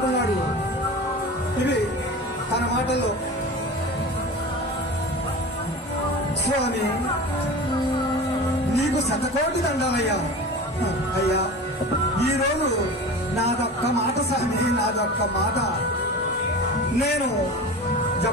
ఇవి తన మాటల్లో, స్వామి నీకు శతకోటి దండాలయ్యా. అయ్యా ఈరోజు నాదొక్క మాట స్వామి, నాదొక్క మాట. నేను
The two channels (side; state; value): both; normal; correlation 0.33